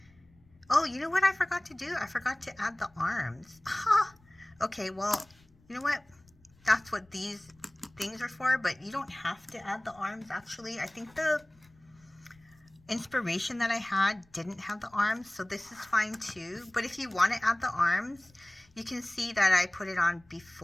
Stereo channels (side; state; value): left; noise; rumble, 30 dB below the sound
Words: Oh, you know what I forgot to do? I forgot to add the arms. Okay, well, you know what? That's what these things are for, but you don't have to add the arms, actually. I think the inspiration that I had didn't have the arms, so this is fine too. But if you want to add the arms, you can see that I put it on